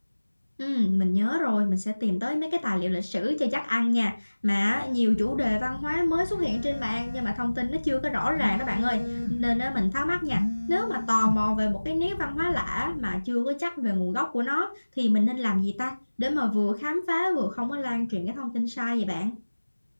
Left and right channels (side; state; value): both; inverted; correlation -1.00